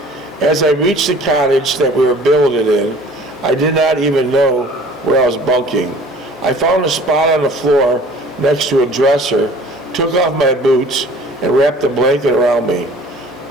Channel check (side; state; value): both; normal; correlation 0.48